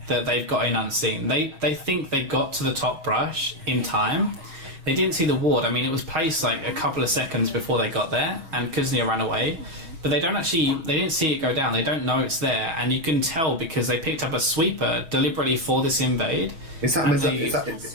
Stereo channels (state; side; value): late; left; 6.3 ms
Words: that they've got in unseen. They think they got to the top brush in time. They didn't see the ward. I mean, it was placed like a couple of seconds before they got there, and Kuznia ran away. But they didn't see it go down. They don't know it's there, and you can tell because they picked up a sweeper deliberately for this invade. Is